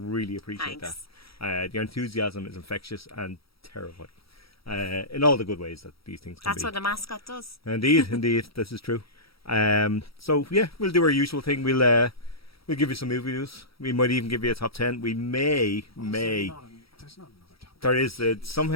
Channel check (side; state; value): right; late; 0.75 ms